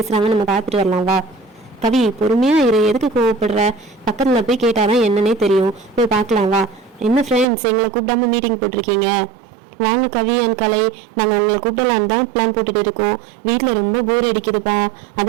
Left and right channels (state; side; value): drops out; left; at 7.5 s